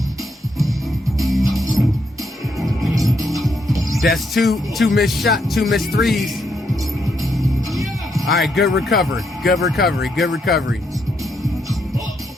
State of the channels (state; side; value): normal; both; correlation 0.77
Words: That's two missed threes. All right, good recovery. Good recovery. Good recovery.